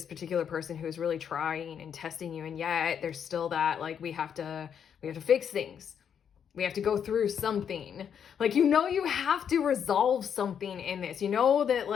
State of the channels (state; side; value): quieter; right; 8.0 dB